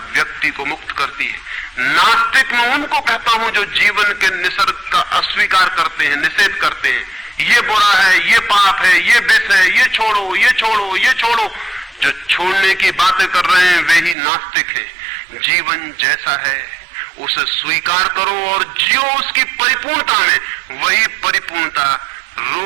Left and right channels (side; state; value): left; drops out; at 14.2 s